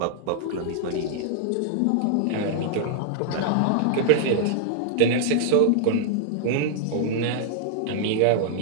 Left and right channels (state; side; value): different; both; correlation -0.01